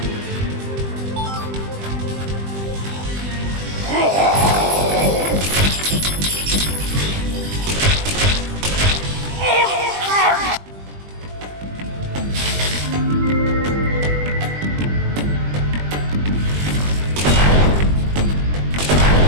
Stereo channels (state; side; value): late; left; 20 ms